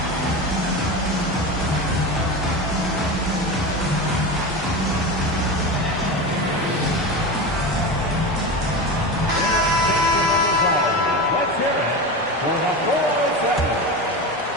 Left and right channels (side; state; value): both; normal; correlation 0.24